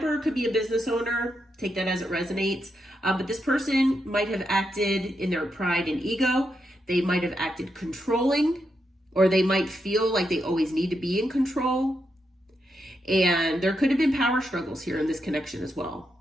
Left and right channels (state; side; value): normal; both; correlation 0.83